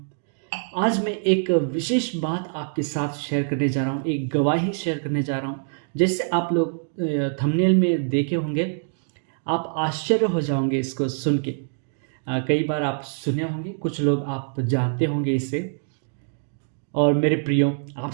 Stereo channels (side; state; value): left; silent; digital silence